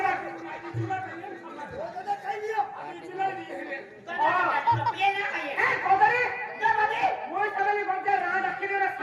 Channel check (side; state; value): both; identical; correlation 1.00